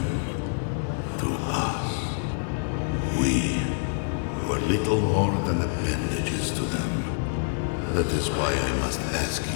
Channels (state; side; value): silent; right; digital silence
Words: to us. We were little more than appendages to them. That is why I must ask